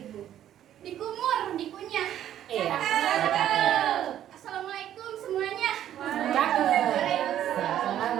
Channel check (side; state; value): left; quieter; 11.3 dB